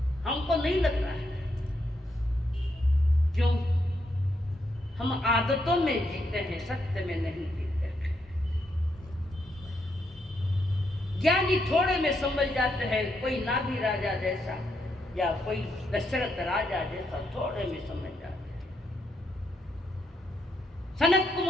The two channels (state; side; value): normal; both; correlation 0.79